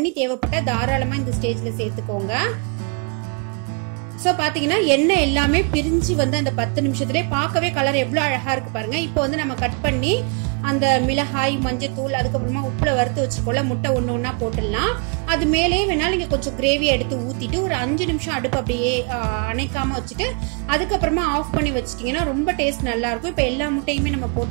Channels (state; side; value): quieter; left; 35.5 dB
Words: தேவைப்பட்டால் தாராளமாக இந்த ஸ்டேஜில் சேர்த்துக்கோங்க. ஸோ பார்த்தீங்கன்னா எண்ணெய் எல்லாமே பிரிஞ்சு வந்து அந்த 10 நிமிஷத்துலேயே பார்க்கவே கலர் எவ்வளோ அழகாக இருக்குது பாருங்கள். இப்போ வந்து நம்ம கட் பண்ணி அந்த மிளகாய், மஞ்சள் தூள், அதுக்கப்புறமா உப்பில் வறுத்து வச்சுருக்கோம்ல முட்டை ஒன்று ஒன்றா போட்டுடலாம். அது மேலே வேணாலும் நீங்கள் கொஞ்சம் கிரேவியை எடுத்து ஊற்றிட்டு ஒரு 5 நிமிஷம் அடுப்பு அப்படியே அணைக்காமல் வச்சுட்டு அதுக்கப்புறமா ஆஃப் பண்ணி வச்சிட்டிங்கன்னா ரொம்ப டேஸ்ட் நல்லாயிருக்கும். இப்போ எல்லா முட்டையுமே நம்ம